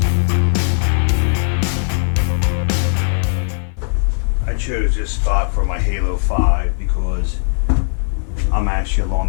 I chose this spot for my Halo 5 because I'm actually along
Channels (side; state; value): right; silent; 55 dB below the other